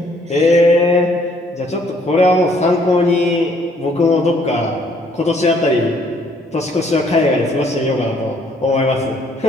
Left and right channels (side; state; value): both; normal; correlation 0.64